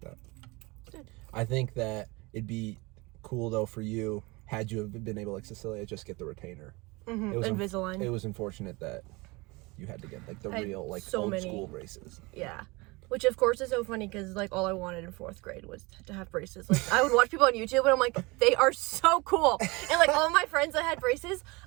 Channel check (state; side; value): quieter; left; 24.8 dB